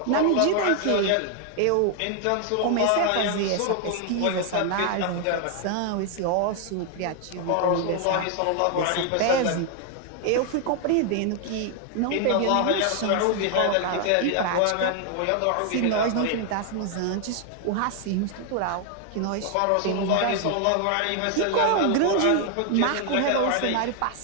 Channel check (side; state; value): both; different; correlation 0.00